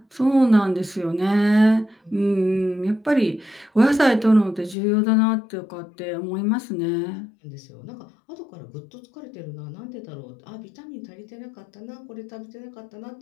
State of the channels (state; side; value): drops out; right; at 4.8 s